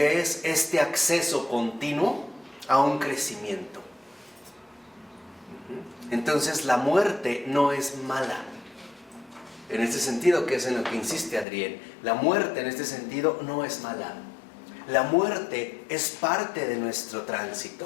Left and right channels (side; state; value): right; drops out; at 11.5 s